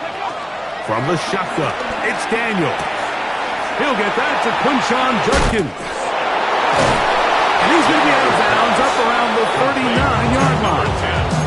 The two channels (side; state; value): both; identical; correlation 1.00